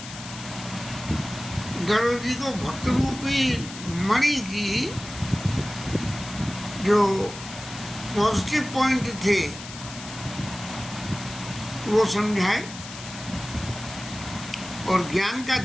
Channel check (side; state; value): left; noise; hiss, 13 dB below the sound